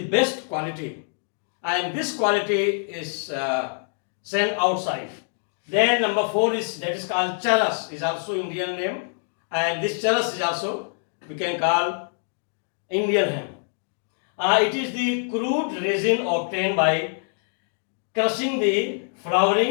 best quality, and this quality is sent outside. Then number 4 is, that is called charas, is also Indian name, and this charas is also we can call Indian hemp. It is the crude resin obtained by crushing the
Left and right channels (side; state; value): right; silent; 62 dB below the other